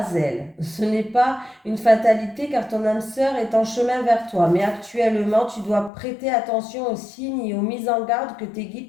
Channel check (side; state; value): right; drops out; at 5.9 s